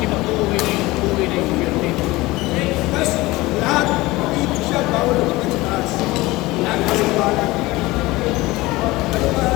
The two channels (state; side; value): quieter; right; 20.2 dB